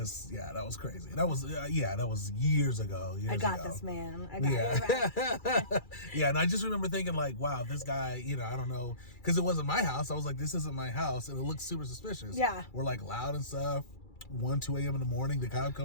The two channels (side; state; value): right; late; 2.3 ms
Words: yeah, that was crazy. That was, that was years ago. I got this, man. I got it. Yeah, and I just remember thinking, like, wow, this guy, you know, I don't know, because it wasn't my house. I was like, this isn't my house, and it looks super suspicious. Yeah. We're like loud and stuff. 2 a.m. in the morning, the cop